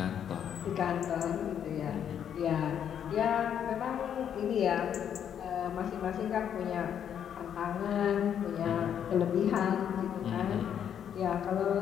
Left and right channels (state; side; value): quieter; right; 8.9 dB